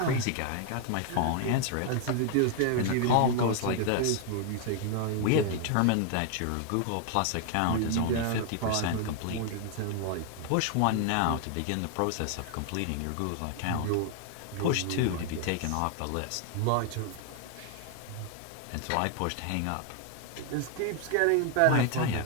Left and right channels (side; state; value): both; different; correlation 0.00